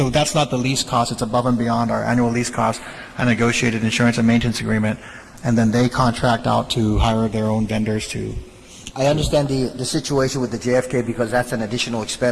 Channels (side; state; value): both; identical; correlation 1.00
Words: that's not the lease cost. It's above and beyond our annual lease cost, a negotiated insurance and maintenance agreement, and then they contract out to hire their own vendors to. I understand the situation with the JFK because that's an additional